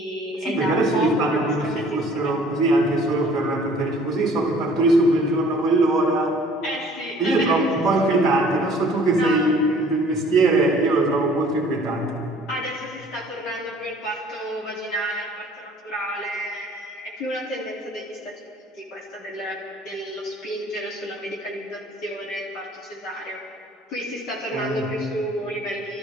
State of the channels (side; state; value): both; normal; correlation 0.53